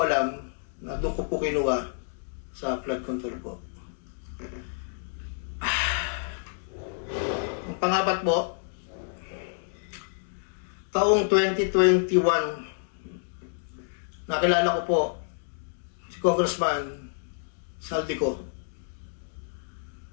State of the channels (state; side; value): silent; right; digital silence